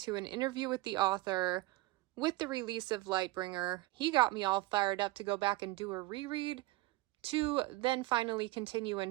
to an interview with the author with the release of Lightbringer. He got me all fired up to go back and do a reread to then finally continue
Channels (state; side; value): quieter; left; 19.3 dB